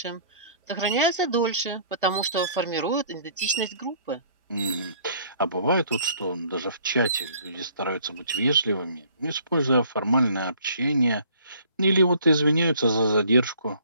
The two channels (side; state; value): both; inverted; correlation -0.57